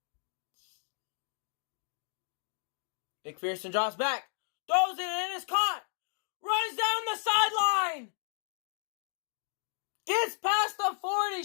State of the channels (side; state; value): right; silent; digital silence